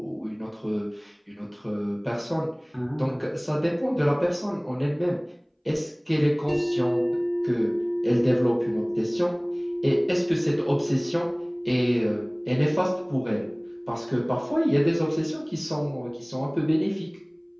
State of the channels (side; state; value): both; identical; correlation 1.00